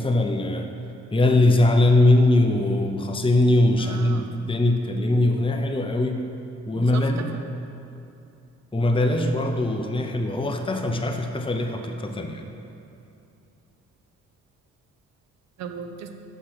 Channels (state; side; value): normal; both; correlation 0.81